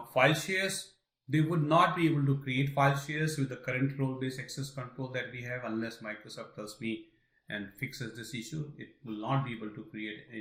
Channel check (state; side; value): identical; both; correlation 1.00